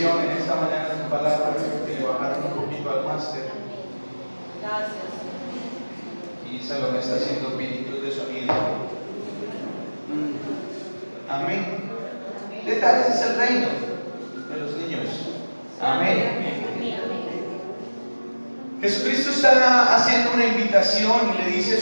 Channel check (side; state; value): both; inverted; correlation -1.00